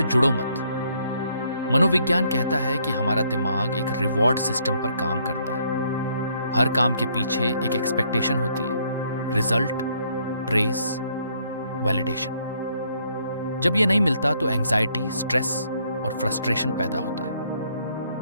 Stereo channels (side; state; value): both; inverted; correlation -0.69